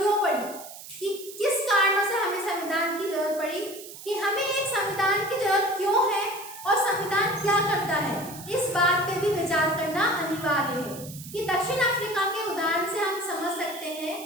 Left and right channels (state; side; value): noise; right; hiss, 14 dB below the sound